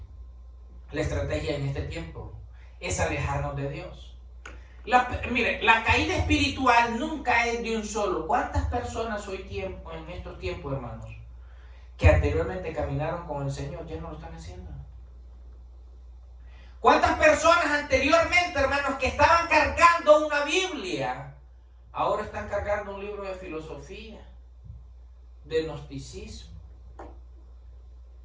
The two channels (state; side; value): identical; both; correlation 1.00